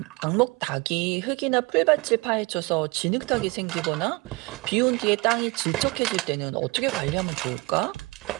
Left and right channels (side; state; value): left; quieter; 25.7 dB